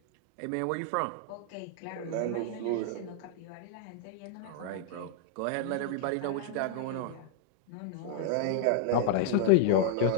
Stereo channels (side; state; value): both; different; correlation 0.00